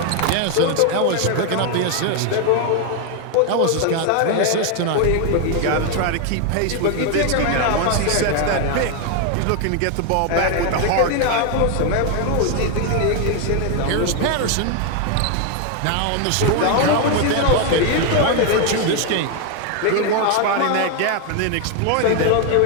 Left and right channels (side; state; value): both; different; correlation 0.01